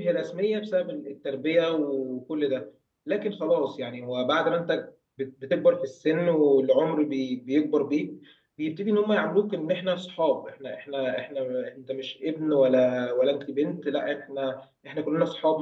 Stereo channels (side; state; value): both; identical; correlation 1.00